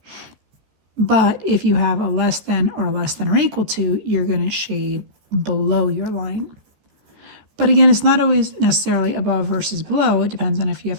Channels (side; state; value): left; late; 14 ms